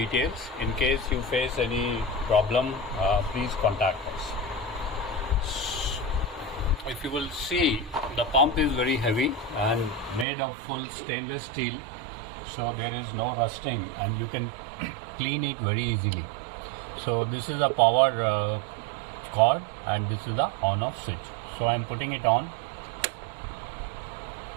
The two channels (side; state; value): left; drops out; at 10.2 s